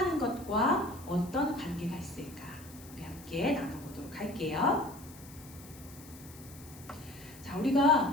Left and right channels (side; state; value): left; noise; hiss, 19 dB below the sound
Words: 것과 어떤 관계가 있을까? 우리 함께 나눠보도록 할게요. 자,